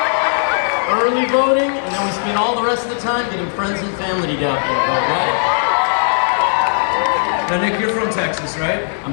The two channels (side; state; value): right; silent; 65 dB below the other